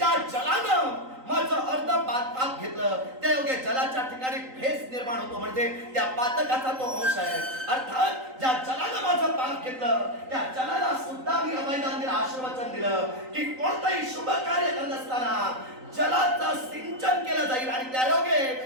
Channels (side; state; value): left; late; 3.9 ms